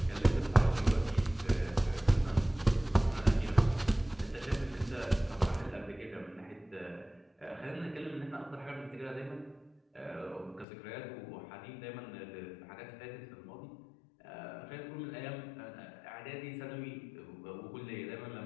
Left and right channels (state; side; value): drops out; right; at 10.7 s